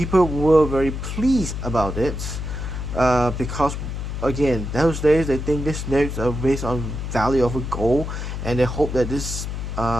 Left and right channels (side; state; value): left; noise; hum, 5 dB below the sound